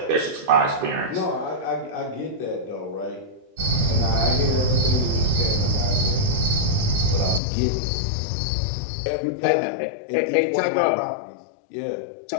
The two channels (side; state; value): right; drops out; at 7.4 s